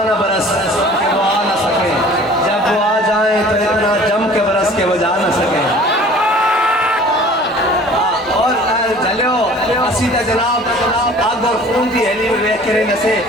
نہ برس کہ وہ آ نہ سکے, جب وہ آ جائیں تو اتنا جم کے برس کے وہ جا نہ سکے. اور جلیو اسی تا جناب آگ اور خون دی ہیلی میں ویک کریں نسے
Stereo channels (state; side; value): normal; both; correlation 0.48